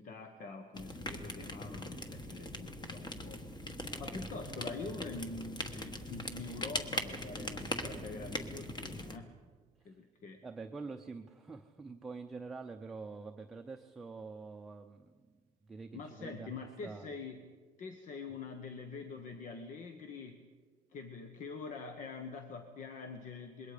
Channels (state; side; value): normal; both; correlation 0.29